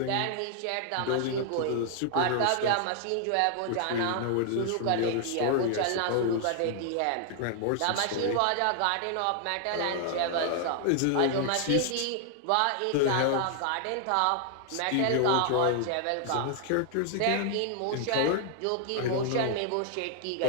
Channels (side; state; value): both; different; correlation 0.00